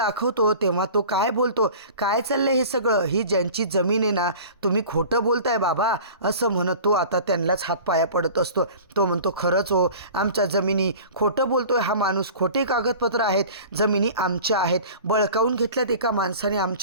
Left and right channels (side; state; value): both; inverted; correlation -0.40